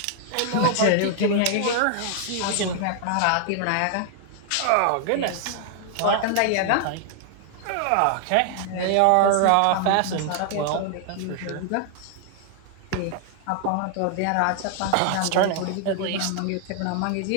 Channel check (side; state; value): both; different; correlation 0.00